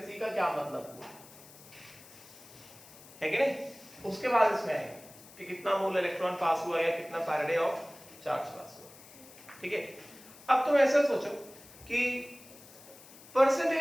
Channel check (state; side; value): noise; left; hiss, 20 dB below the sound